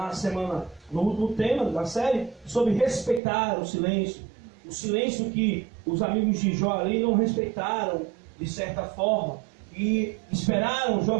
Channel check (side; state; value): left; drops out; at 3.2 s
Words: semana, no último tema da série, sobre respeitar o silêncio. O silêncio que os amigos de Jó ali não respeitaram, de certa forma, e esperaram